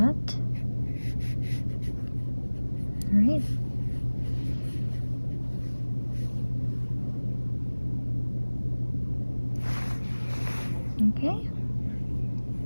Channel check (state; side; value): inverted; both; correlation -1.00